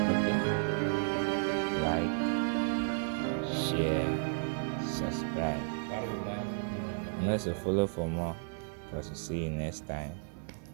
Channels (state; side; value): silent; left; digital silence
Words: share, subscribe, and also follow for more. Because we'll see you next time.